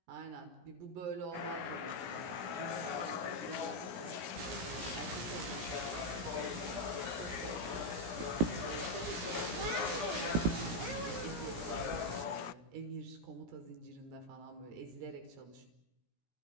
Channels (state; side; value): late; left; 17 ms